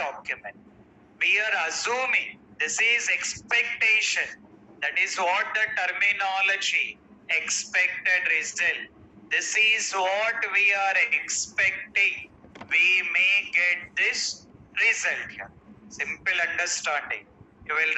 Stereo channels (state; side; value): identical; both; correlation 1.00